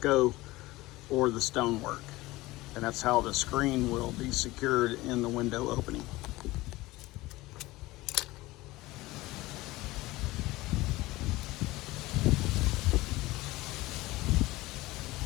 or the stonework, and that's how the screen will be secured in the window opening.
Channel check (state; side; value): quieter; right; 19.4 dB